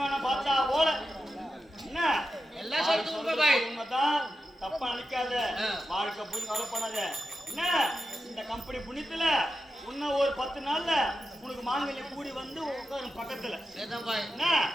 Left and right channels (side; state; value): both; normal; correlation 0.90